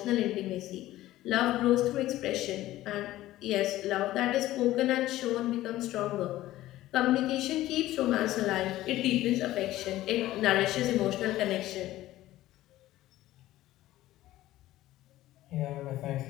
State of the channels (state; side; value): quieter; right; 15.4 dB